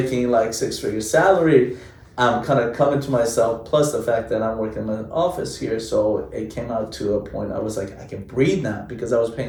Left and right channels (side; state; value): both; identical; correlation 1.00